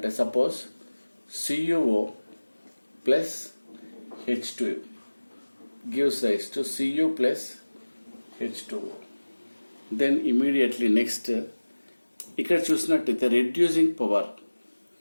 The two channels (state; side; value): inverted; both; correlation -1.00